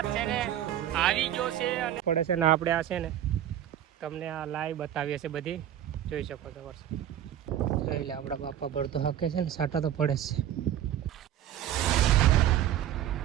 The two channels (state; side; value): quieter; left; 11.2 dB